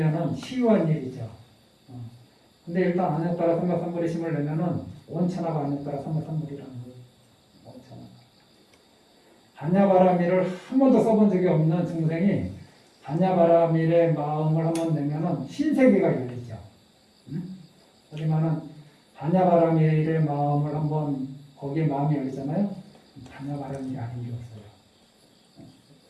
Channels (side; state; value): both; identical; correlation 1.00